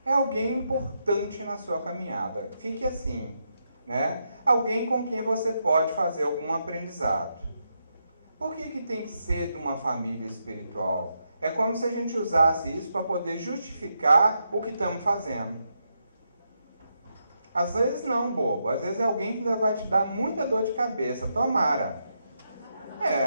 É alguém importante na sua caminhada. Fique assim, né? Alguém com quem você pode fazer algum aprendizado. Por que tem que ser de uma família espiritual? É como se a gente usasse isso para poder justificar o que estamos fazendo. Às vezes não, bobo. Às vezes é alguém que ainda vai te dar muita dor de cabeça. Tomara.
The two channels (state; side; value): inverted; both; correlation -0.82